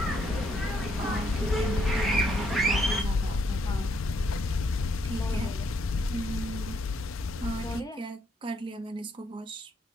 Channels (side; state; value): both; normal; correlation 0.73